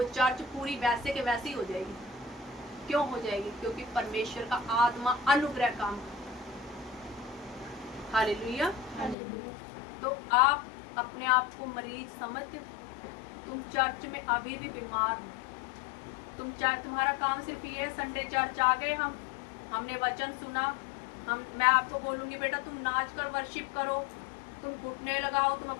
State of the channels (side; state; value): right; drops out; at 9.2 s